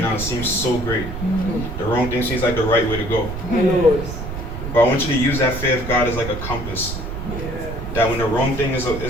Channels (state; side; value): noise; right; rumble, 7 dB below the sound